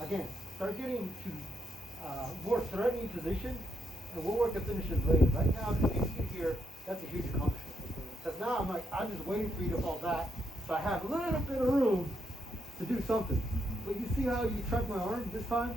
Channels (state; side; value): normal; both; correlation 0.79